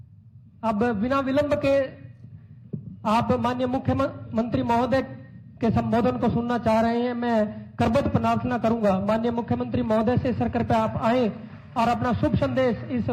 अब बिना विलंब के आप माननीय मुख्यमंत्री महोदय के संबोधन को सुनना चाह रहे हैं। मैं करबद्ध प्रार्थना करूंगा माननीय मुख्यमंत्री महोदय से सर कृपया आप आए और अपना शुभ संदेश इस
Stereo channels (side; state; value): both; identical; correlation 1.00